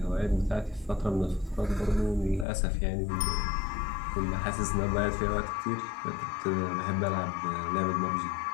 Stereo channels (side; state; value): right; drops out; at 2.5 s